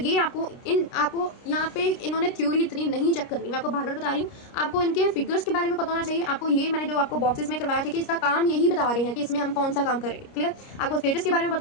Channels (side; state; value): right; late; 29 ms